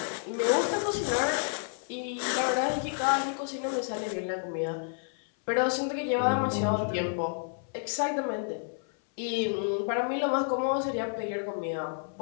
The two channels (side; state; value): right; silent; 58 dB below the other